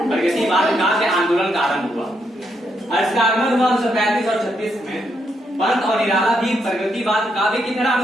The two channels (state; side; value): normal; both; correlation 0.78